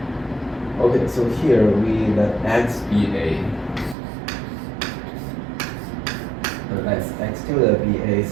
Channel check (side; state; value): left; drops out; at 4.0 s